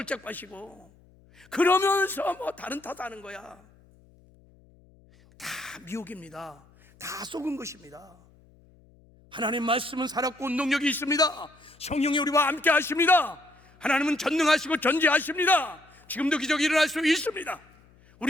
빠지고, 그러면서 뭐 다른 탓하는 거야. 다 미혹입니다. 다 속은 것입니다. 하나님 말씀은 살았고 운동력이 있습니다. 성령이 우리와 함께 하십니다. 하나님은 전능하시고 전지하십니다. 지금도 기적이 일어날 수 있습니다.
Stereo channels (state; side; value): noise; left; hum, 28 dB below the sound